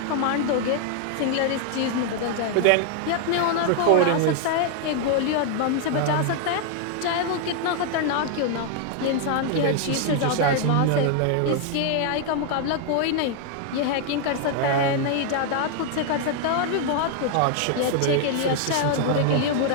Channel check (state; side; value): different; both; correlation 0.00